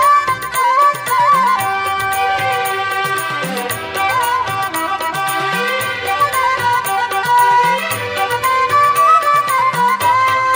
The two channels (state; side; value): identical; both; correlation 1.00